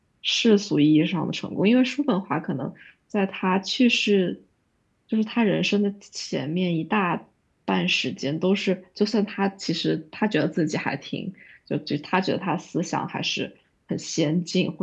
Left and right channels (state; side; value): identical; both; correlation 1.00